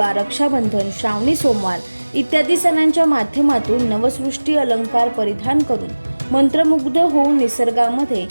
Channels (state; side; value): inverted; both; correlation -1.00